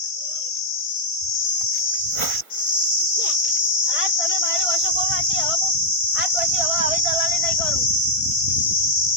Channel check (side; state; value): right; late; 1.5 ms